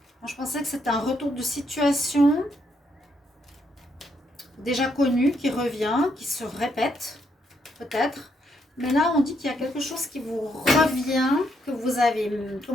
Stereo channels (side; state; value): both; normal; correlation 0.75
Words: Moi, je pensais que c'était un retour de situation déjà connu qui revient, qui se répète, peut-être. Mais là, on dit qu'il y a quelque chose qui vous revient, que vous avez,